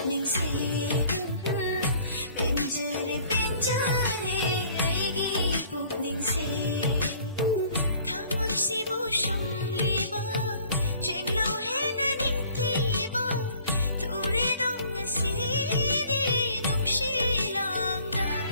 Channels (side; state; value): both; inverted; correlation -0.54